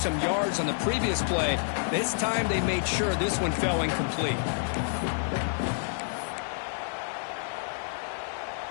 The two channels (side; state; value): right; silent; 59 dB below the other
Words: yards on the previous play. This time they made sure this one fell incomplete.